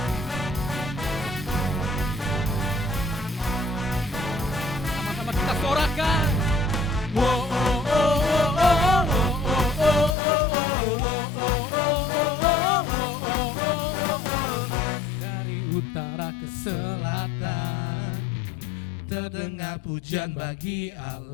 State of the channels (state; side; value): drops out; right; at 10.2 s